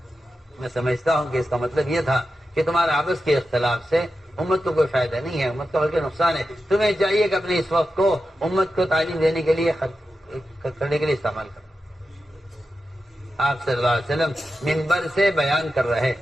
میں سمجھتا ہوں کہ اس کا مطلب یہ تھا کہ تمہارے آپس کے اختلاف سے امت کو کوئی فائدہ نہیں ہے، امت کا بلکہ نقصان ہے. تمہیں چاہیے کہ اپنے اس وقت کو امت کو تعلیم دینے کے لیے کرنے کے لیے استعمال کرو. آپ صلی اللہ علیہ وسلم منبر سے بیان کر رہے.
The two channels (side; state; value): both; normal; correlation 0.91